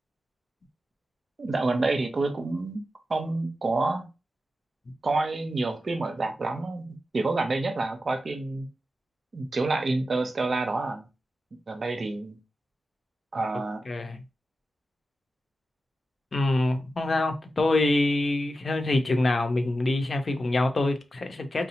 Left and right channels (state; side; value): normal; both; correlation 0.91